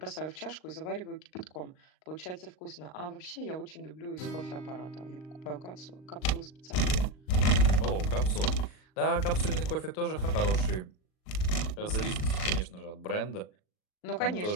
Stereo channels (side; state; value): right; late; 38 ms